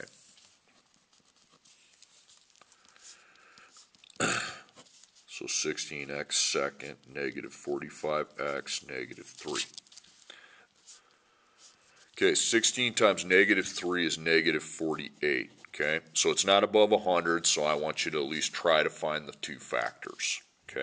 16x second, negative 45x, negative 3. Okay, 16 times negative 3 is negative 48. Okay, so it's not above 100, so I want you to at least try to find the two factors.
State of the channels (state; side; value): identical; both; correlation 1.00